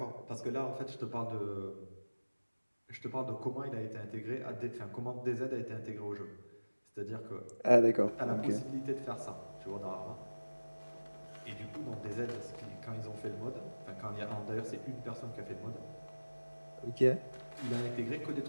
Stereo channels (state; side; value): inverted; both; correlation -1.00